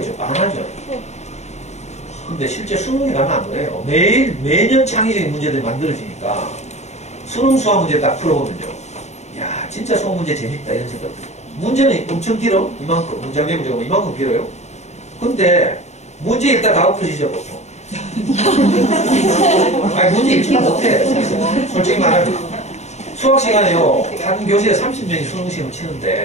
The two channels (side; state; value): right; late; 0.32 ms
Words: 많아져요. 근데 실제 수능에 가면 안 그래요. 매년 창의적인 문제들이 만들어지니까 수능 수학 문제 딱 풀어보면요. 야, 진짜 수학 문제 재밌다 이런 생각 들어요. 문제는 엄청 길어. 이만큼. 문장의 문제가 이만큼 길어요. 근데 문제 읽다 다 엎어지죠 보통. 아니 문제 읽지도 못해. 솔직히 말하면 수학 시간에요. 한 교실에 30명이 수능시험을